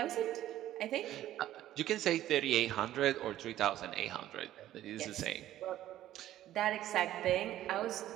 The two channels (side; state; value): left; quieter; 13.3 dB